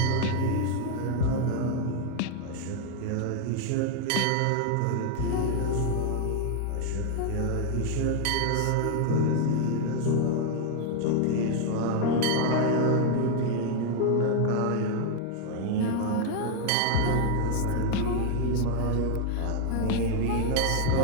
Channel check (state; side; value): different; both; correlation 0.00